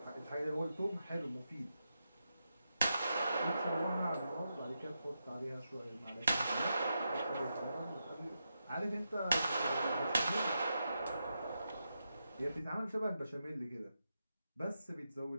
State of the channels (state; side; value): inverted; both; correlation -0.86